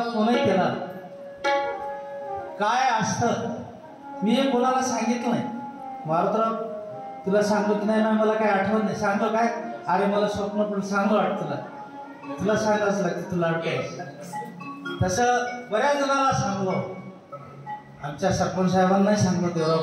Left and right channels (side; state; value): both; identical; correlation 1.00